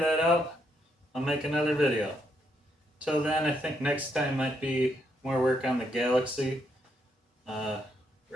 out, I'll make another video. Till then, I think next time might be more work on the Galaxy,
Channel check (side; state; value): both; normal; correlation 0.77